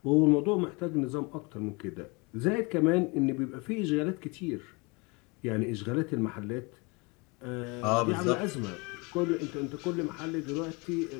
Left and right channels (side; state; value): right; quieter; 28.4 dB